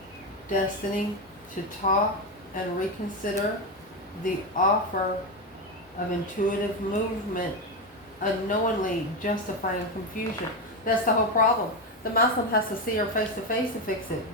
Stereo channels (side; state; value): both; normal; correlation 0.12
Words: Destiny to talk and reconsider the offer of intuitive movement unknowingly justifying confusion. That's the whole problem. The masculine has to see her face to face to fix it.